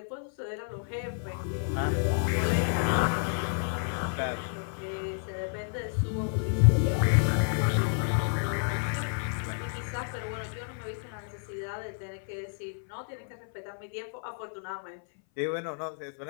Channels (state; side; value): silent; right; 57 dB below the other